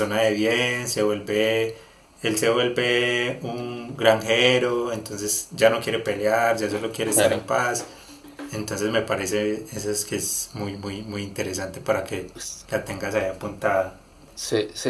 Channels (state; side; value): identical; both; correlation 1.00